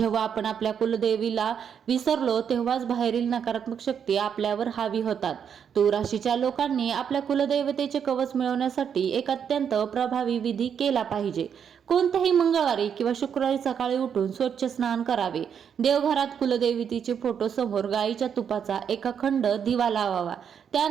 आपण आपल्या कुलदेवीला विसरलो तेव्हाच बाहेरील नकारात्मक शक्ती आपल्यावर हावी होतात. तूळ राशीच्या लोकांनी आपल्या कुलदेवतेचे कवच मिळवण्यासाठी एक अत्यंत प्रभावी विधी केला पाहिजे. कोणत्याही मंगळवारी किंवा शुक्रवारी सकाळी उठून स्वच्छ स्नान करावे. देवघरात कुलदेवतेचे फोटो समोर गाईच्या तुपाचा एक अखंड दिवा लावावा.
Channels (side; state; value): left; quieter; 7.8 dB